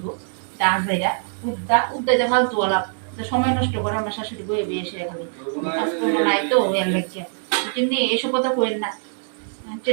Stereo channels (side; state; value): left; silent; digital silence